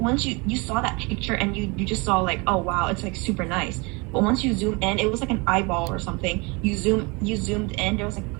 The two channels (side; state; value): left; quieter; 28.0 dB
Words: you saw that picture and you just saw like, oh wow, it's like super nice. But once you zoom in, it was like an eyeball or something. You zoomed in, there was like